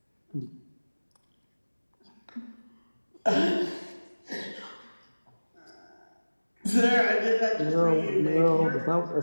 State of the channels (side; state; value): both; inverted; correlation -1.00